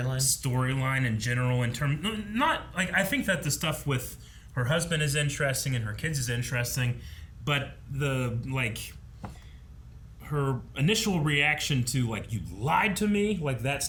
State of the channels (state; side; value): identical; both; correlation 1.00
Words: in general in terms... Not... Like, I think that the stuff with her husband is interesting and her kids is interesting, but the, like... her initial reaction to, like, you lied to me, like, that